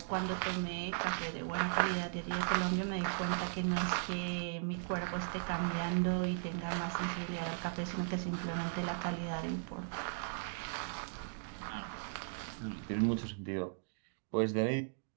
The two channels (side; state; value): left; silent; digital silence